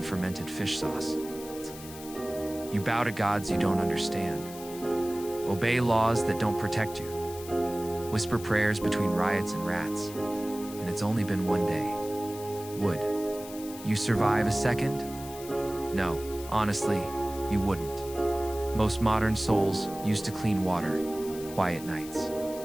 fermented fish sauce. You bow to gods you don't understand, obey laws that don't protect you, whisper prayers between riots and rats, and it's only been one day. Would you survive a second? No, honestly, you wouldn't. Most modern souls used to clean water, quiet nights.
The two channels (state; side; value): noise; left; hiss, 15 dB below the sound